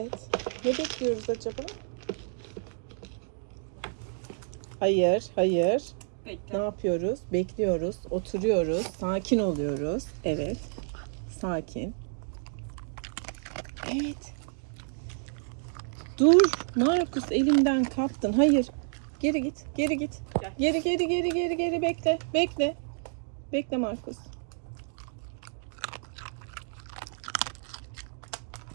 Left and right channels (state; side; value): silent; left; digital silence